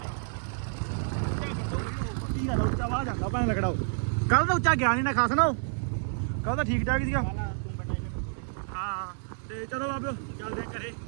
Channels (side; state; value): left; silent; 58 dB below the other